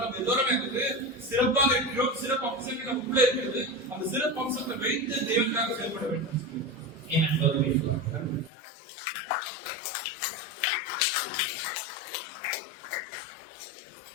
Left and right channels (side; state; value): right; drops out; at 8.5 s